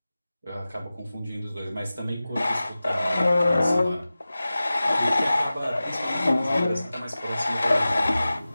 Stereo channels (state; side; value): inverted; both; correlation -0.96